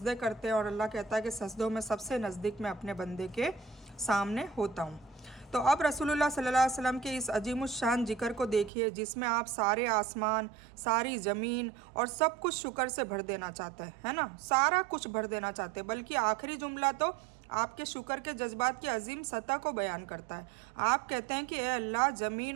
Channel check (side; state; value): left; drops out; at 8.7 s